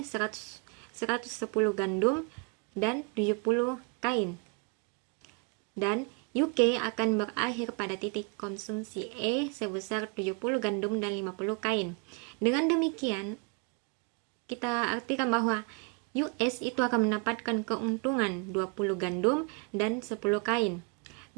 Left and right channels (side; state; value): left; quieter; 33.8 dB